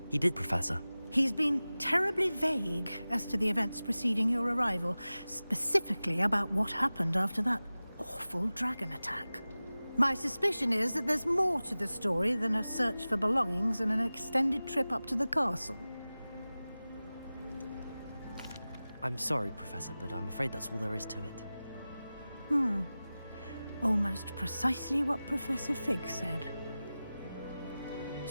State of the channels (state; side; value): inverted; both; correlation -0.97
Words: He did, Professor. He's been terribly vague as to the events preceding your arrival, specifically about what happened after that awful dragon attack. My suspicion is that there's more to the story than a search for belongings and an extended trip up to the castle. I'm sorry, Professor, but I'm afraid that's all there is to it. Almost precisely what Professor Fig said.